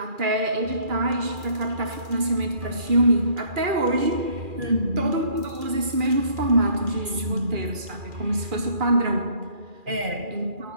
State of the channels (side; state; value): left; late; 2.4 ms